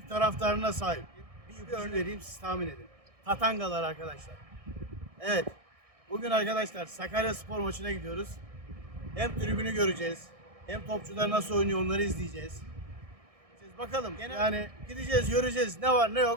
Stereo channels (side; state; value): left; late; 1.6 ms